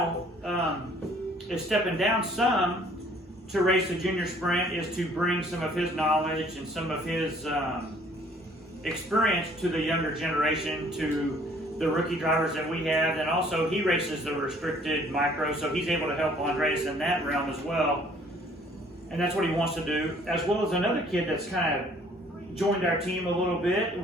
is stepping down some to race the junior sprint, is to bring some of his knowledge and some of his experience to the younger generation, to the rookie drivers that we have. And also he races the restricted micro, so he's able to help Andreas in that realm as well, and that's what he wants to do, as well as another kid that's kind of joined our team a little bit.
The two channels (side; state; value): both; normal; correlation 0.58